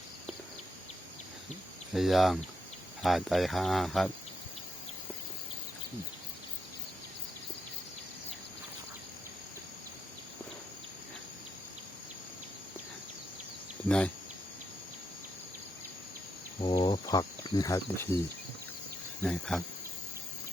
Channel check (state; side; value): normal; both; correlation 0.80